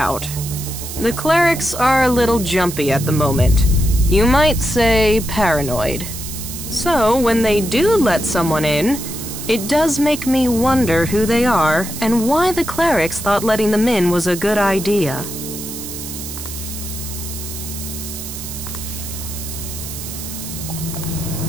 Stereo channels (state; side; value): noise; right; hiss, 9 dB below the sound